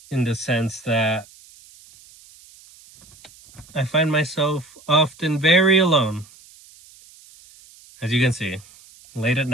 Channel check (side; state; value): right; noise; hiss, 25 dB below the sound